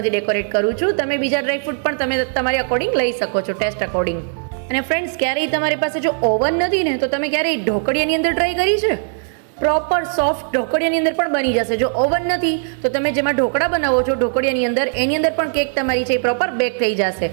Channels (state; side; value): silent; left; 67 dB below the other